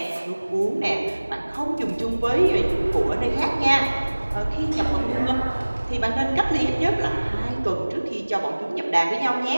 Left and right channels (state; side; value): inverted; both; correlation -1.00